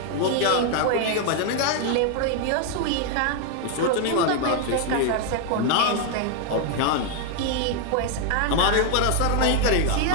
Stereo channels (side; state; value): both; different; correlation 0.00